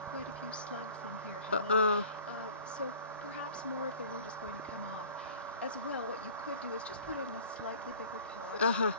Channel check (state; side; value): inverted; both; correlation -0.46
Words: quite a few slugs in here, Helen. So perhaps more of the root is going to come off. As well, what you could do is just put it in a slightly bigger pot,